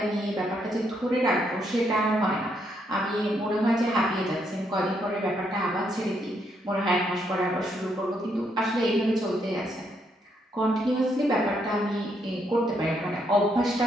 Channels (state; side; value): normal; both; correlation 0.75